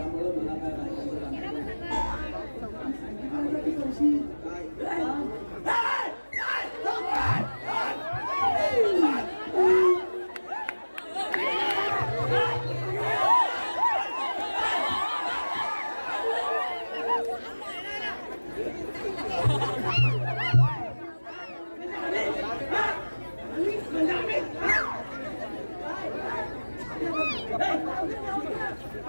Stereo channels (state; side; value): inverted; both; correlation -1.00